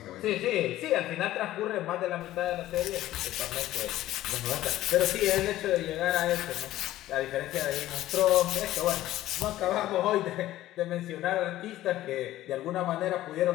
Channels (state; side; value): quieter; right; 14.7 dB